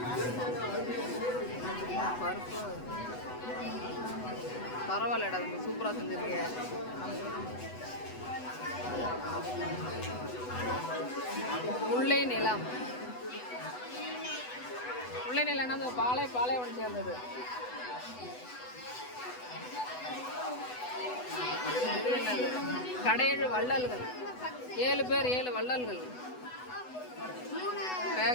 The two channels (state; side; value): late; right; 8.0 ms